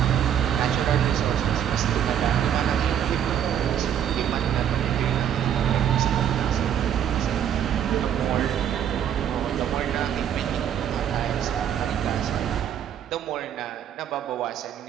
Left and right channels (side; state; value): left; quieter; 9.5 dB